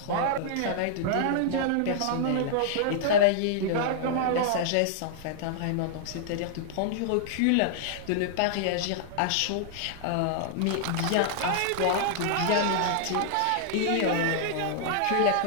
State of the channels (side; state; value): both; different; correlation -0.01